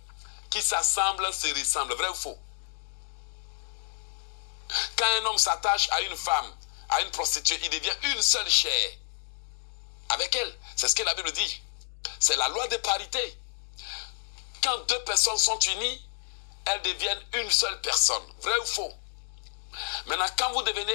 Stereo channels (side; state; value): right; silent; digital silence